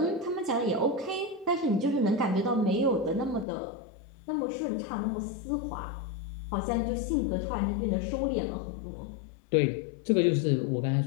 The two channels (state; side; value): drops out; right; at 3.5 s